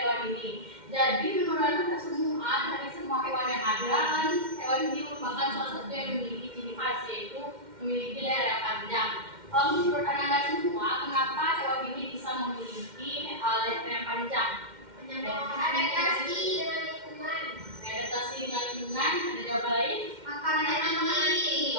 hewan ini. Jadi menurut Anda semua, dari semua hewan yang ada kan, hewan ini merupakan salah satu yang memiliki ciri khas, yaitu memiliki leher yang panjang. Menurut Anda semua, kenapa hewan ini bisa memiliki leher yang panjang? Adaptasi dengan lingkungan. Adaptasi dengan lingkungan. Ada jawaban lain? Makanan yang tinggi.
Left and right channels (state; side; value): late; left; 2.1 ms